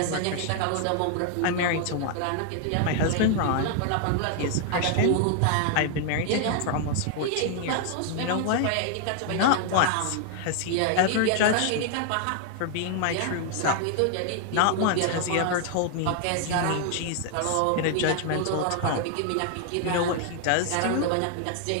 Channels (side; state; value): both; different; correlation 0.00